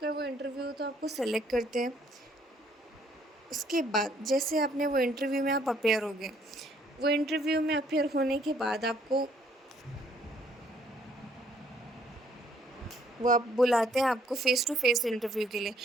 वो इंटरव्यू हो तो आपको सेलेक्ट करते हैं। उसके बाद जैसे आपने वो इंटरव्यू में आप अपेयर हो गए, वो इंटरव्यू में अपेयर होने के बाद आपको वो आप बुलाते हैं आपको फ़ेस टू फ़ेस इंटरव्यू के लिए।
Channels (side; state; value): both; normal; correlation 0.64